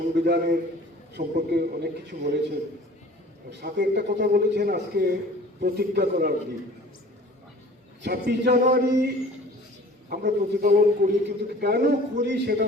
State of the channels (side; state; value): both; normal; correlation 0.47